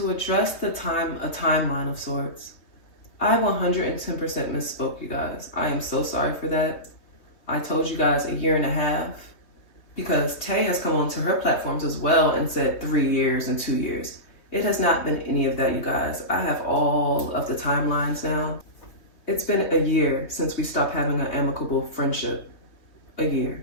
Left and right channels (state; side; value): late; right; 3.2 ms